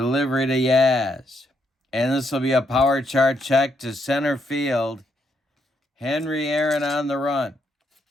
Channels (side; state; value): both; normal; correlation 0.77